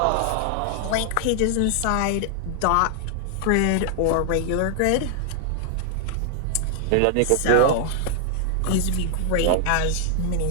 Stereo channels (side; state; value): both; different; correlation -0.01